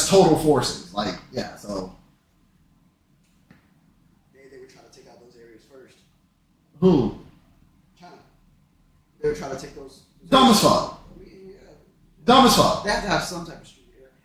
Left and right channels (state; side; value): identical; both; correlation 1.00